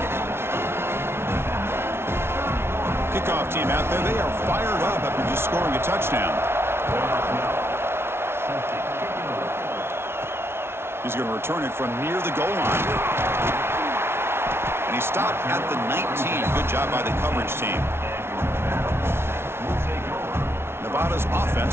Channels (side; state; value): left; late; 0.12 ms